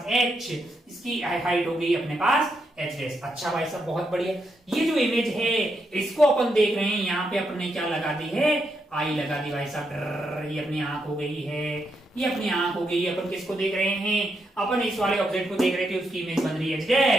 h, इसकी हाइट हो गई अपने पास h डैश। अच्छा भाई साहब बहुत बढ़िया। ये जो इमेज है इसको अपन देख रहे हैं, यहाँ पे अपने क्या लगा दी है, आई लगा दी भाई साहब। ये अपनी आंख हो गई है, ये अपनी आंख हो गई। अपन किसको देख रहे हैं, अपन इस वाले ऑब्जेक्ट को देख रहे थे, उसकी इमेज बन रही है h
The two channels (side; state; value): both; normal; correlation 0.81